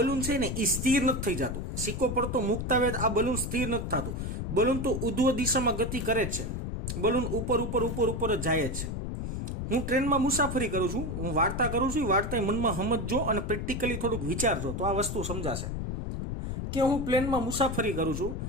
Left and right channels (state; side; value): noise; left; rumble, 4 dB below the sound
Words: છે ને એ સ્થિર નથી થઈ જતું. સિક્કો પડતો મૂકતા હોય આ બલૂન સ્થિર નથી થતું. બલૂન તો ઉધ્વ દિશામાં ગતિ કરે જ છે. બલૂન ઉપર જ જાય જ છે. હું ટ્રેનમાં મુસાફરી કરું છું, હું વાર્તા કરું છું, વાર્તા મનમાં સમજજો અને પ્રેક્ટિકલી થોડુંક વિચારજો તો આ વસ્તુ સમજાશે. કે હું પ્લેનમાં મુસાફરી કરું છું.